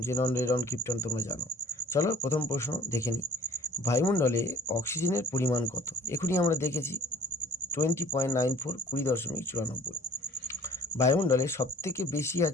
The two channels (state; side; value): normal; both; correlation 0.50